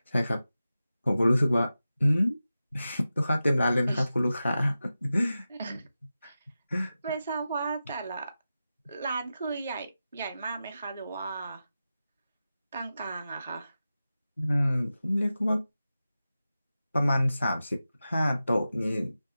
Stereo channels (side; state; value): both; inverted; correlation -0.93